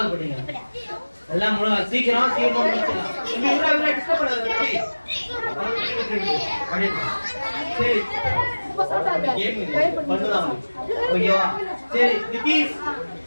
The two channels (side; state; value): both; inverted; correlation -1.00